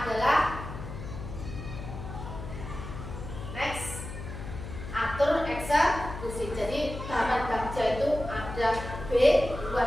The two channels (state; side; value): noise; left; hum, 9 dB below the sound